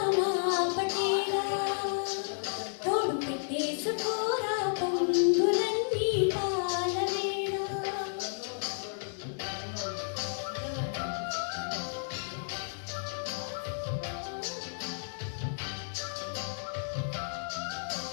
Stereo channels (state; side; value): silent; right; 56 dB below the other